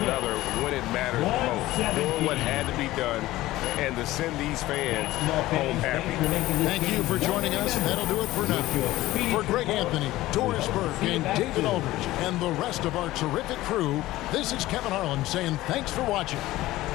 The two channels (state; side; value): quieter; right; 16.8 dB